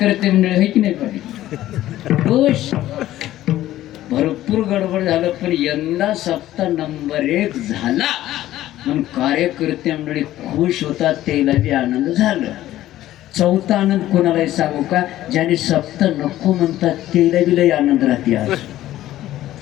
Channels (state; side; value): quieter; right; 14.2 dB